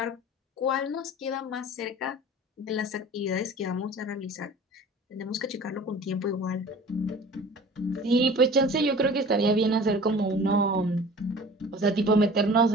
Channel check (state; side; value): normal; both; correlation 0.43